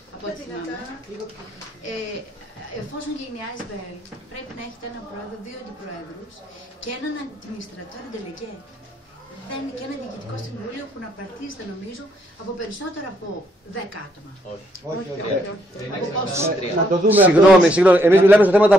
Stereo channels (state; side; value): normal; both; correlation 0.72